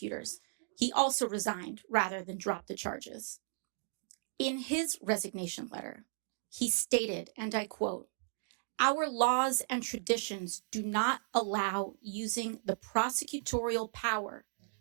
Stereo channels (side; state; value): left; silent; digital silence